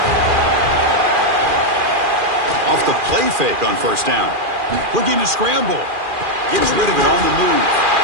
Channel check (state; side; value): late; left; 2.4 ms